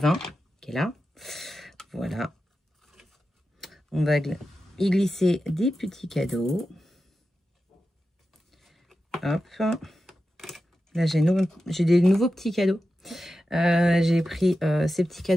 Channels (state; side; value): normal; both; correlation 0.91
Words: qui est là. Voilà. On va y glisser des petits cadeaux. Hop. Là, j'ai des nouveaux petits cadeaux. J'ai pris ces petits